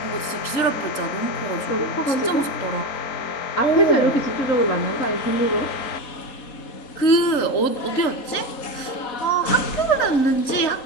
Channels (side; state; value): right; late; 3.8 ms